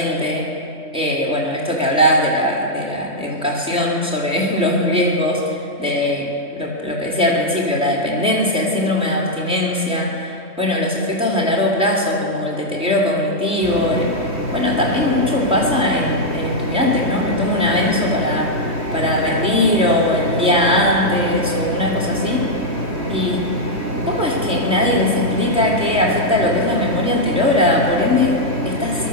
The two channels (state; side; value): late; left; 3.2 ms